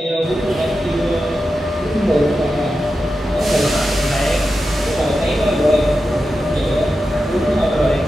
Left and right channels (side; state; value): both; normal; correlation 0.90